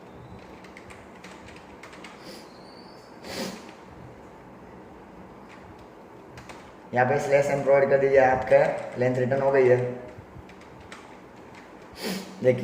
यहाँ पे स्लैश एन प्रोवाइड कर दीजिए, आपका लेंथ रिटर्न हो गई है।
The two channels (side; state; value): both; identical; correlation 1.00